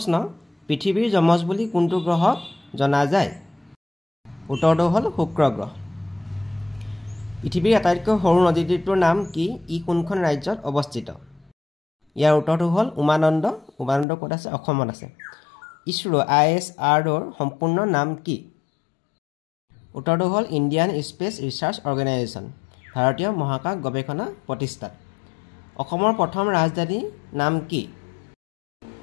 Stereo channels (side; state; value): right; drops out; at 14.1 s